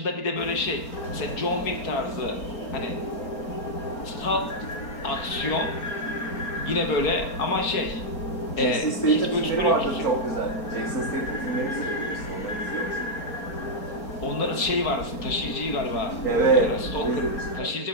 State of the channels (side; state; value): right; late; 4.4 ms